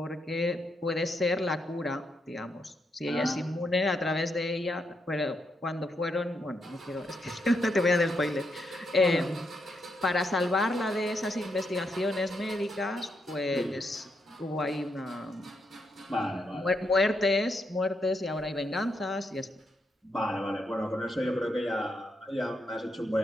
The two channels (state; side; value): normal; both; correlation 0.80